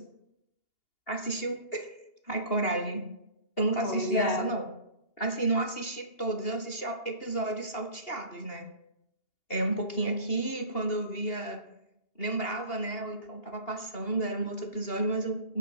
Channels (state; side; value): late; right; 2.8 ms